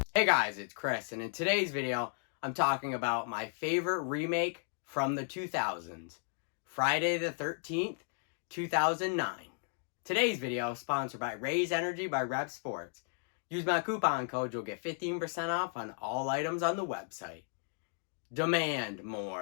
Hey guys, it's Chris, and in today's video, I'm talking about my favorite remake from the 2000s, Friday the 13th, 2009. Today's video is sponsored by Raise Energy by Rep Sports. Use my coupon code, you'll get 15% off on all items on the website. Demand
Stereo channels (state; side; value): silent; right; 55 dB below the other